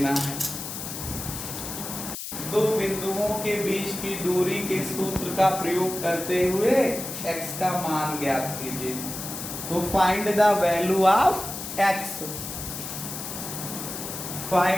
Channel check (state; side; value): noise; left; hiss, 7 dB below the sound